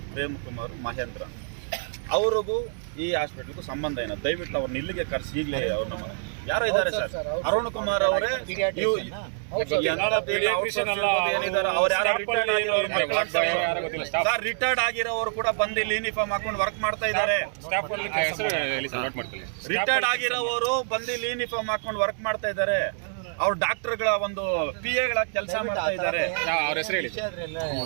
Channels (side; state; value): left; silent; digital silence